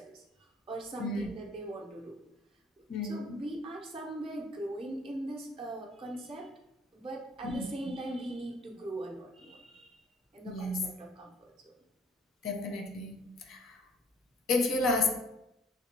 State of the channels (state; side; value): normal; both; correlation 0.57